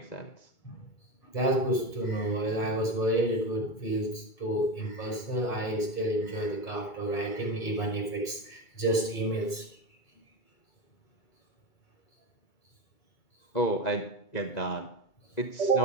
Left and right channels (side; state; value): right; late; 2.2 ms